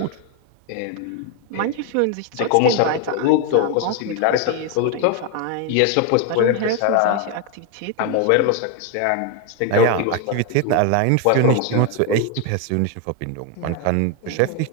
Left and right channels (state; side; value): different; both; correlation 0.01